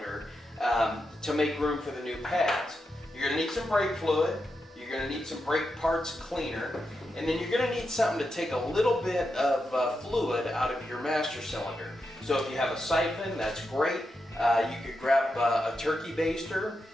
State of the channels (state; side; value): normal; both; correlation 0.87